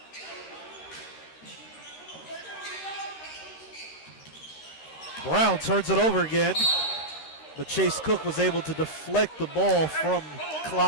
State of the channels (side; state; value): right; late; 13 ms